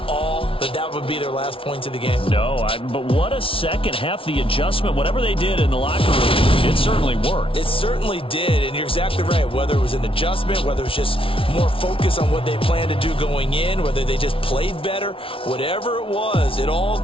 all that that would be their last points of the game? No, but what a second half. The adjustment, whatever they did in the locker room, it certainly worked. It certainly did, and you're exactly right. Whether it was an adjustment, whether it was just more focus on what they planned to do going in, whether they just played better, whatever it was, it all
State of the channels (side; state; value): right; late; 0.26 ms